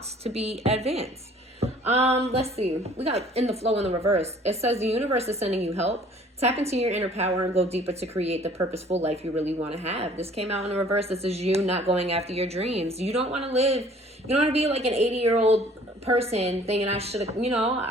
to be advanced. Let's see. We got in the flow in the reverse. It says the universe is sending you help. Tap into your inner power and go deeper to create the purposeful life you really want to have. This came out in the reverse. This is you not going after your dreams. You don't want to live. You don't want to be like an 80-year-old person thinking I should have, you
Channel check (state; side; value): normal; both; correlation 0.54